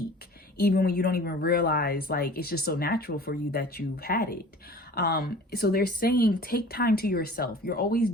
even when you don't even realize, like, it's just so natural for you that you've had it. So they're saying take time to yourself. You're always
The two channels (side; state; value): both; normal; correlation 0.44